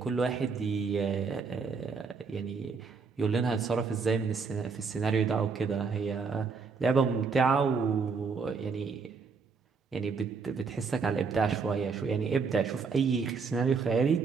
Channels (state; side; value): quieter; left; 5.0 dB